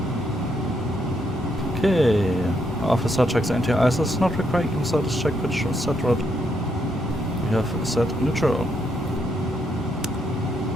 Okay, officer checks anti-ISIS, not requiring status check pitch set rod. We have set neutral.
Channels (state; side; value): normal; both; correlation 0.76